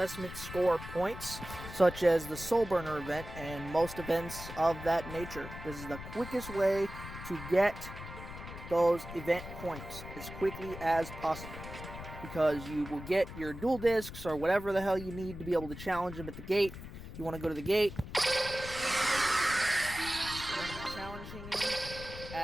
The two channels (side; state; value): left; noise; rumble, 11 dB below the sound